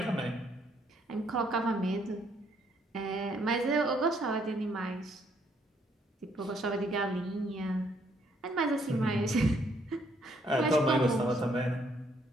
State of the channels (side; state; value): both; normal; correlation 0.69